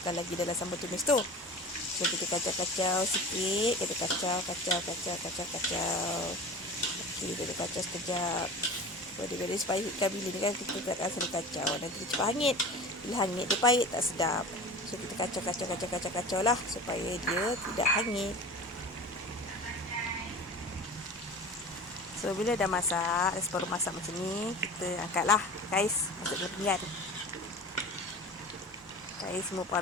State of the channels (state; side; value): normal; both; correlation 0.36